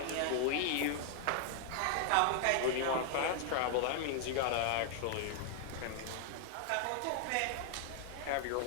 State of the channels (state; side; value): different; both; correlation 0.00